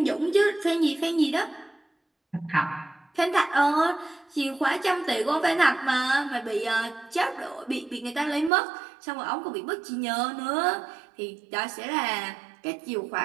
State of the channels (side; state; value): left; drops out; at 8.5 s